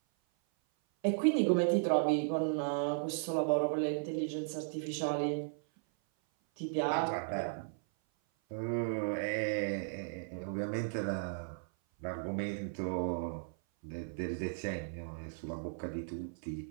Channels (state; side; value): silent; left; 54 dB below the other